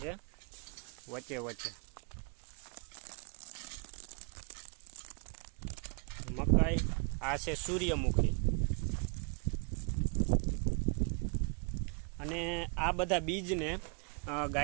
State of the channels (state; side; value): quieter; left; 39.0 dB